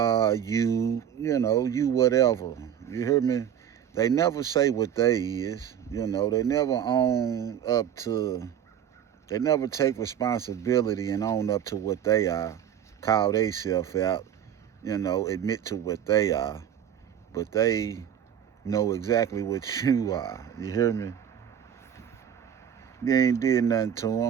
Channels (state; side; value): quieter; left; 9.4 dB